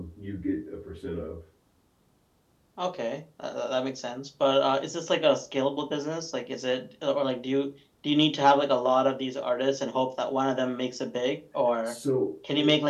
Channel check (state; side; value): identical; both; correlation 1.00